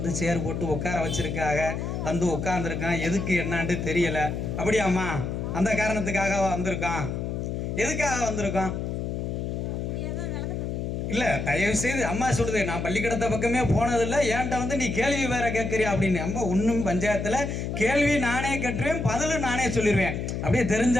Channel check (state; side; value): noise; left; hum, 3 dB below the sound